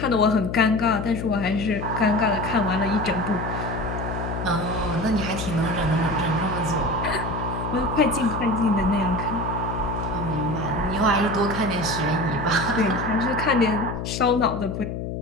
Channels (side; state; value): left; noise; hum, 5 dB below the sound